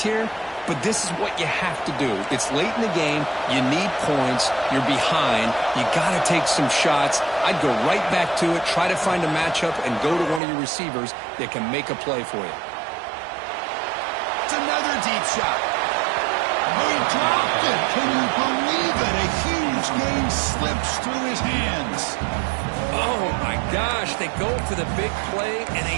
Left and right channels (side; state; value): left; drops out; at 10.4 s